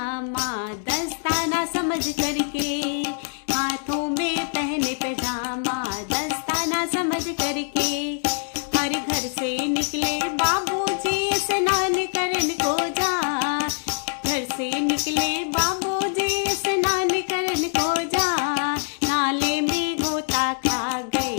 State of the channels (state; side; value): silent; right; digital silence